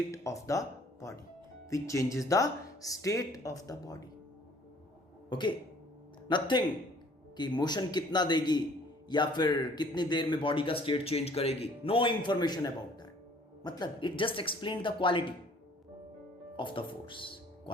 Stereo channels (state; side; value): normal; both; correlation 0.56